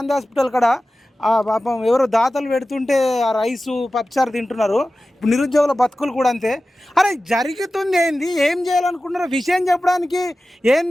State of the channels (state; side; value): normal; both; correlation 0.95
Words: హాస్పిటల్ కాడ పాపం ఎవరో దాతలు పెడుతుంటే ఆ రైసు పప్పుచారు తింటున్నారు. ఇప్పుడు నిరుద్యోగుల బతుకులు కూడా అంతే. అరే జరుగుతుంది ఏంది, ఏం చేయాలనుకుంటున్నారో విషయం చెప్పడానికి